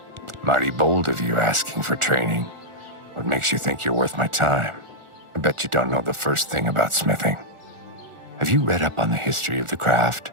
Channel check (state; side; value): late; left; 1.4 ms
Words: Mighty bold of you asking for training. What makes you think you're worth my time? I bet you don't know the first thing about smithing. Have you read up on the history of the craft?